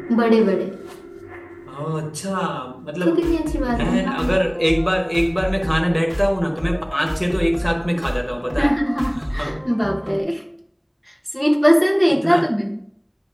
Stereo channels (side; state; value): both; identical; correlation 1.00